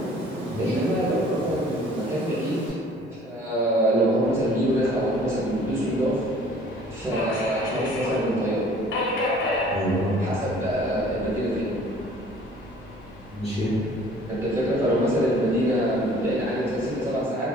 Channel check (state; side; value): normal; both; correlation 0.52